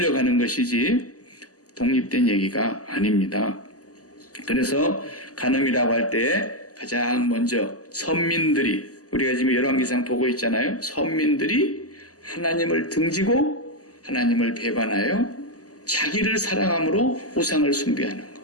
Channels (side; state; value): right; late; 0.67 ms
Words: 가는 것이지 독립된 얘기가 아닙니다. 그래서 간음이라고 할 때 가장 먼저 선민들이 우리가 지금 열왕기상 보고 있잖아요. 선민들이 하나님을 등지고 하나님을 배반하여 자기를 사랑함으로 우상을 숭배하는 거.